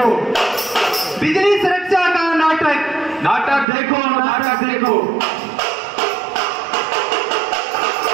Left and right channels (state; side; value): drops out; left; at 3.7 s